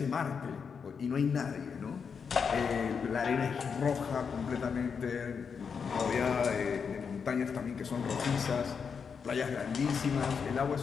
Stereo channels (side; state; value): right; quieter; 6.2 dB